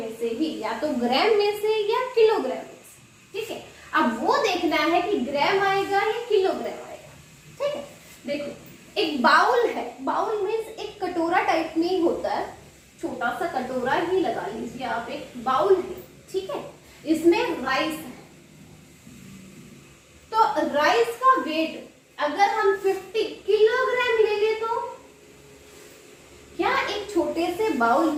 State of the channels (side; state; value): both; identical; correlation 1.00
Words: से ही, या तो ग्राम में से या किलोग्राम में से। ठीक है, अब वो देखना है कि ग्राम आएगा या किलोग्राम आएगा। ठीक है, देखो एक बाउल है, बाउल में एक कटोरा टाइप में ही होता है, छोटा सा कटोरा ही लगा लीजिए आप, एक बाउल है। ठीक है, इसमें राइस है, तो राइस का वेट अगर हम 50 किलोग्राम ले ले तो क्या एक छोटे से बाउल